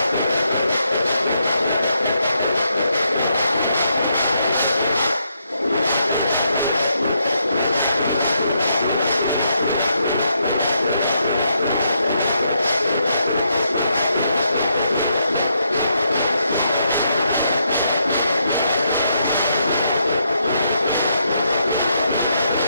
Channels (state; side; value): inverted; both; correlation -0.77